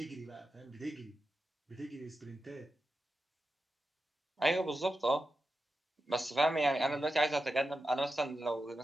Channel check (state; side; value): normal; both; correlation 0.91